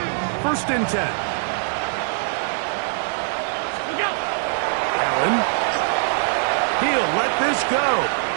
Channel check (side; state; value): left; silent; digital silence